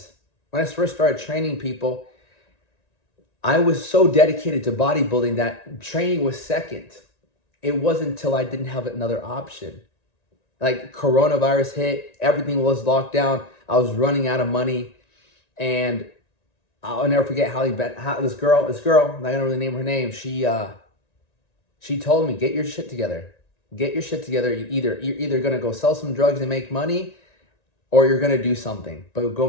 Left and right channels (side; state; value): right; late; 1.9 ms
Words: when I first started training people, I was so dedicated to bodybuilding that training was second. It wasn't until I didn't have another option. Like coronavirus hit, everything was locked down. I was running out of money, and I'll never forget how this girl, I'm not gonna really name her name. She told me, get your shit together. Get your shit together. You're either gonna go sell some drugs and make money, or you're gonna do something, but go